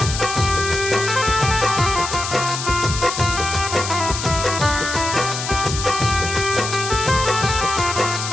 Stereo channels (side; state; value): left; noise; hiss, 5 dB below the sound